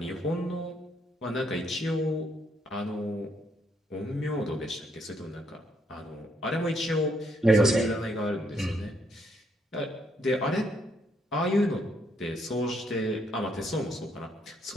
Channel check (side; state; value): both; normal; correlation 0.73